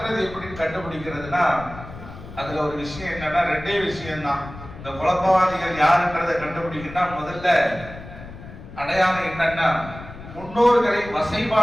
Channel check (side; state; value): left; noise; rumble, 14 dB below the sound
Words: எப்படி கண்டுபிடிக்கிறதுனா, அதுல ஒரு விஷயம் என்னன்னா, ரெண்டே விஷயம் தான். இந்த குழப்பவாதிகள் யாருன்றதை கண்டுபிடிக்கணும்னா முதல்ல அடையாளம் என்னன்னா, முன்னோர்களை